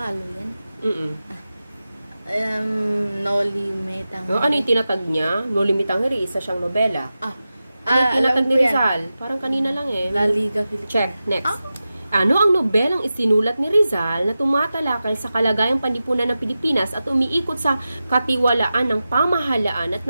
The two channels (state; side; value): inverted; both; correlation -0.93